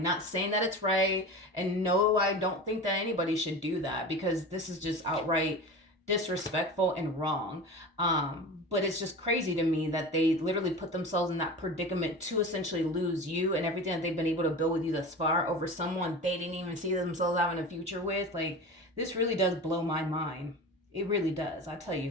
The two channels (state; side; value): normal; both; correlation 0.31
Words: Not saying that it's right, and no, I don't think that anybody should do that, because this is just outright disrespectful and wrong. But it's just crazy to me that they literally put themselves in that predicament to essentially lose you and everything that they've been able to build with you thus far over someone they didn't even see themselves having a future with. Like, this really does blow my mind. It really does. I tell